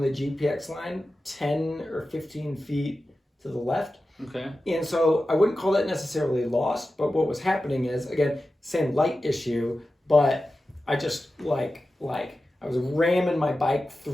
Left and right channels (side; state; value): both; normal; correlation 0.93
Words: the GPX line 10 or 15 feet to the left. Okay. And so I wouldn't call that necessarily lost, but what was happening is, again, same light issue, but I just I was ramming my bike